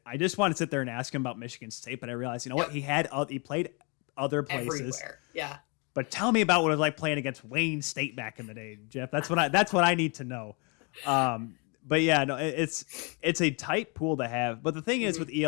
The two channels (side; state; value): right; quieter; 32.6 dB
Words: I just wanted to sit there and ask him about Michigan State, but I realized, what, he played other places. Everywhere. Yeah. But tell me about what it was like playing against Wayne State back in the day, Jeff. That's what I need to know. But yeah, no, it's a tight pool to have. But the thing is with